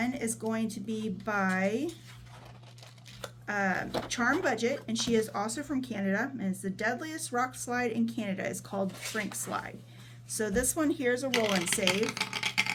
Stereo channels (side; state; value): both; identical; correlation 1.00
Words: is going to be by Charm Budget, and she is also from Canada, and it's the deadliest rock slide in Canada. It's called Frink Slide. So this one here is a roll and save,